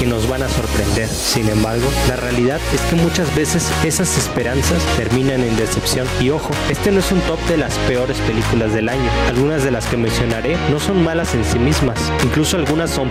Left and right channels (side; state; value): both; identical; correlation 1.00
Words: nos van a sorprender. Sin embargo, la realidad es que muchas veces esas esperanzas terminan en decepción. Y ojo, este no es un top de las peores películas del año. Algunas de las que mencionaré no son malas en sí mismas, incluso algunas son